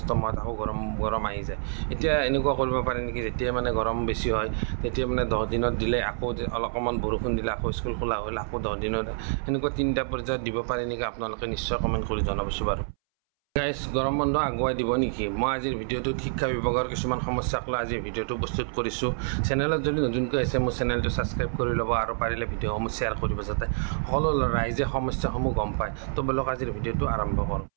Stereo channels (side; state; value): left; silent; 60 dB below the other